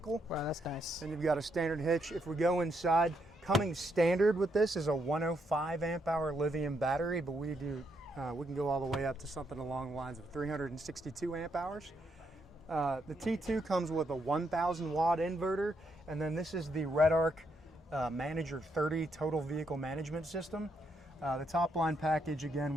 Wow, that's nice. And you've got a standard hitch. If we go inside, coming standard with this is a 105 amp hour lithium battery, but we can go all the way up to something along the lines of 362 amp hours. The T2 comes with a 1000 watt inverter, and then this is the RedArc Manager 30 total vehicle management system. The top line package again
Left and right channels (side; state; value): both; normal; correlation 0.77